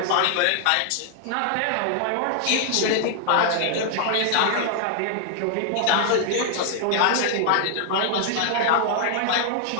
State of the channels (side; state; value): both; different; correlation 0.00